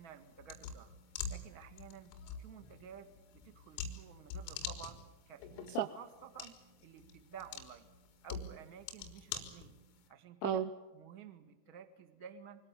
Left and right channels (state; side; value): late; right; 25 ms